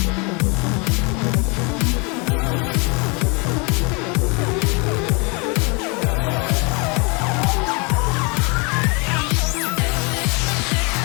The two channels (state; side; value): quieter; right; 31.1 dB